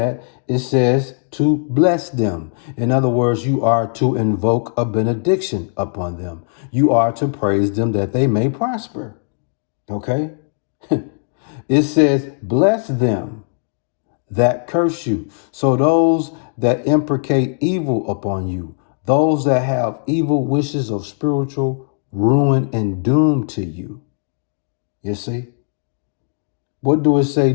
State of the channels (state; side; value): silent; right; 64 dB below the other